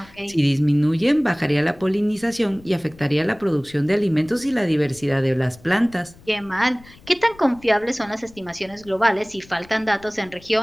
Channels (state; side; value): noise; left; rumble, 24 dB below the sound